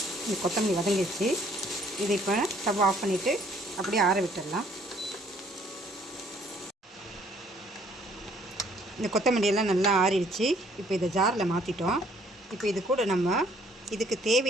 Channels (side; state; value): both; normal; correlation 0.62